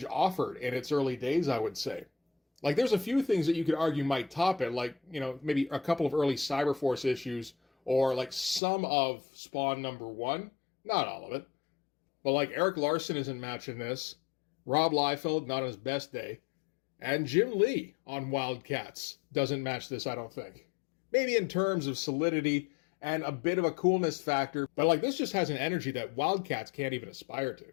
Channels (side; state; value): right; drops out; at 8.6 s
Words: offered in its early days, I would say. Like, there's a few things that you could argue might top it, like, maybe a couple of early Cyberforce issues, or like some of Spawn #1. Not all of it. But like Eric Larson isn't matching this, Rob Liefeld not on his best day, and Jim Lee on Wildcats doesn't match this, I don't think. Maybe in terms of solidity and a bit of a coolness factor, but like this just has an energy that Wildcats can't even aspire